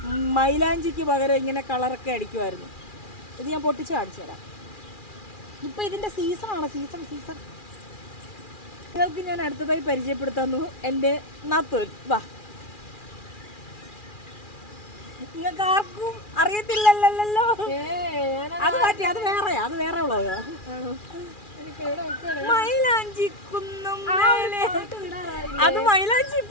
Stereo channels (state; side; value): late; right; 2.4 ms